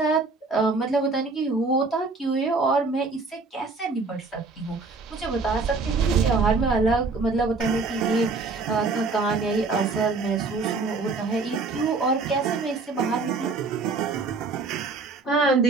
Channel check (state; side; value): quieter; left; 3.9 dB